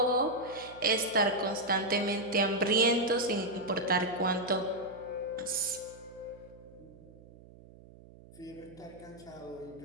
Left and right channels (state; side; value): noise; right; hum, 21 dB below the sound